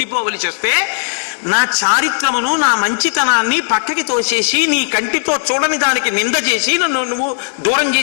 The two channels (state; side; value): silent; right; digital silence